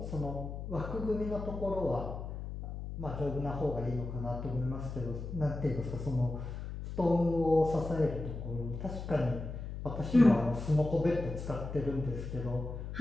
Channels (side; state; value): left; noise; hum, 7 dB below the sound